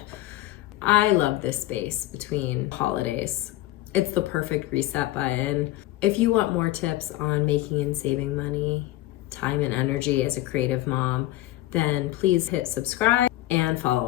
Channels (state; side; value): quieter; right; 16.2 dB